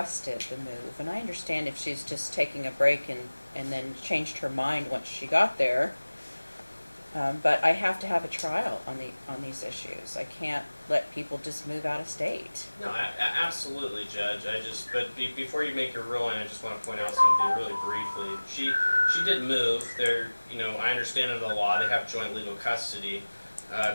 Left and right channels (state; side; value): inverted; both; correlation -1.00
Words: the move, and I understand if she's just taking a break and then changed her mind once she got there, but I have to have a trial on these issues. I can't let people just move out of state. No, absolutely, Judge. Before you make your ruling, I just want to point out something really briefly. She did move. I understand under the law they have joint legal custody.